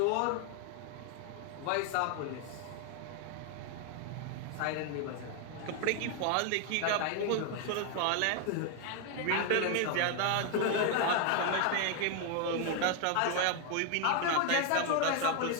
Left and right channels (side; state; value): both; different; correlation 0.01